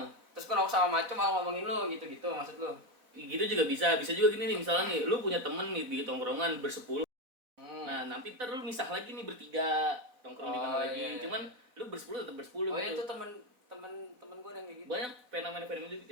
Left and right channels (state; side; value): late; left; 4.0 ms